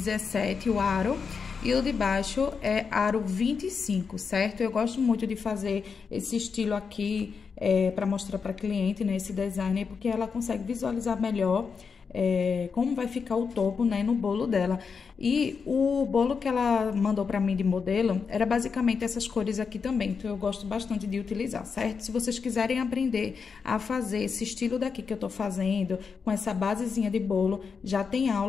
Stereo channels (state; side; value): quieter; right; 5.6 dB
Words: o aro, e o de baixo é aro 25, certo? Eu gosto muito de fazer esse estilo aqui para mostrar para cliente, né? Esse design, porque ela consegue visualizar melhor como vai ficar o topo, né, no bolo dela. E o bolo que ela mandou pra mim de modelo era basicamente essas cores aqui também, então eu gosto bastante de utilizar, certo? Se vocês quiserem aprender a fazer esse estilo daqui que eu tô fazendo, com essa basezinha de bolo, já tem